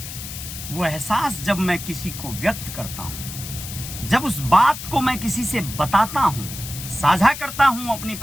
वो एहसास जब मैं किसी को व्यक्त करता हूं, जब उस बात को मैं किसी से बताता हूं, साझा करता हूं अपनी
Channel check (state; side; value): noise; left; hiss, 9 dB below the sound